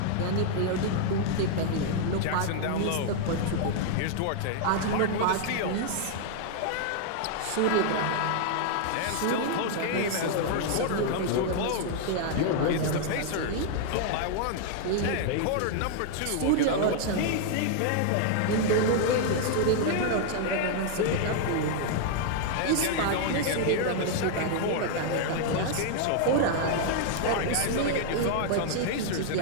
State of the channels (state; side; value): different; both; correlation -0.01